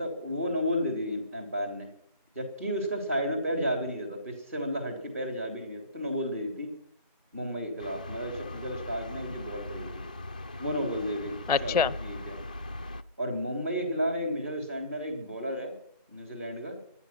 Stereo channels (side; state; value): both; inverted; correlation -0.51